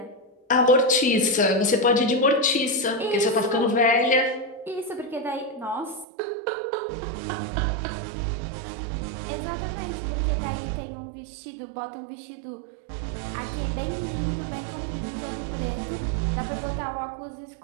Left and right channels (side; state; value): left; drops out; at 6.1 s